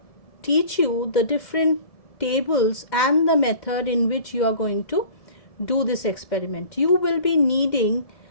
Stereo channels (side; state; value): right; late; 2.1 ms